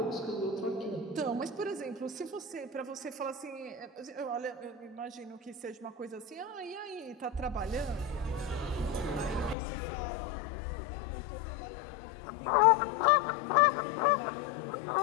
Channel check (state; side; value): drops out; right; at 9.6 s